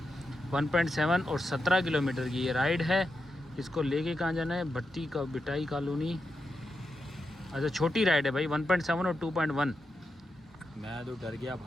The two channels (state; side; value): normal; both; correlation 0.87